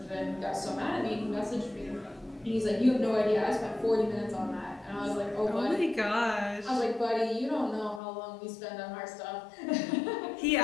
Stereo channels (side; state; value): right; drops out; at 8.0 s